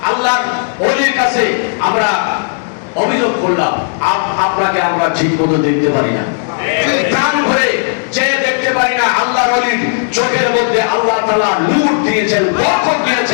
আল্লাহর ওলির কাছে আমরা অভিযোগ করলাম, আপনাকে আমরা ঠিক মতো দেখতে পারি না, প্রাণ ভরে চেয়ে দেখতে পারি না। আল্লাহর ওলির চোখের মধ্যে আল্লাহ তাআলা নূর দিয়েছেন, বরকত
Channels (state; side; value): silent; right; digital silence